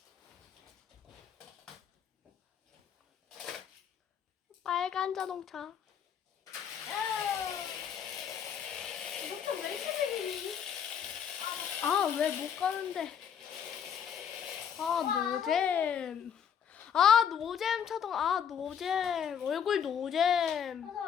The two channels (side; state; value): right; quieter; 8.2 dB